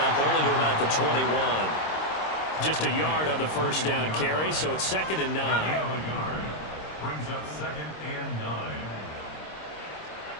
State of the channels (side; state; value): right; late; 26 ms